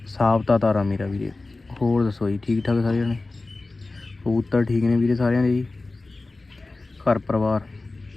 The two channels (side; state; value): right; quieter; 3.3 dB